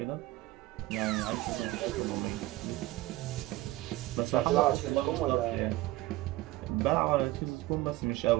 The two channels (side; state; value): left; quieter; 18.1 dB